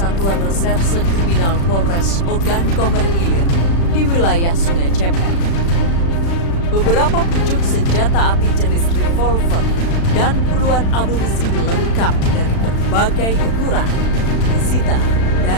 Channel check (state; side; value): late; right; 36 ms